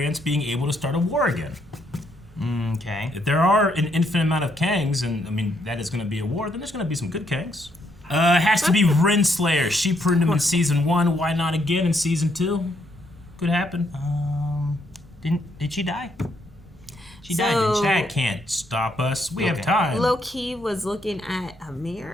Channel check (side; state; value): both; normal; correlation 0.74